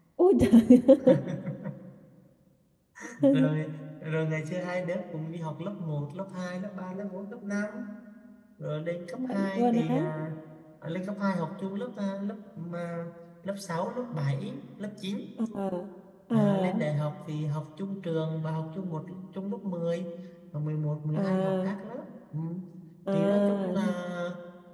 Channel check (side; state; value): both; identical; correlation 1.00